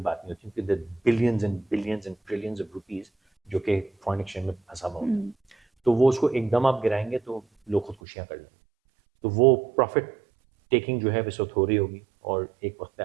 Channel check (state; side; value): drops out; left; at 8.0 s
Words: نہیں ہوتی کیونکہ billions and billions and trillions of rupees جو کہ فارن ایکسچینج میں پھنسا ہوا ہوتا ہے. تو وہ اس کو ایک دم آپ گرائیں گے تو لوگ خودکشیاں کر لیں گے. تو وہ پروفٹ ٹیکنگ جو ہے اس وقت ہو رہی ہوگی اور ایک وقت پہ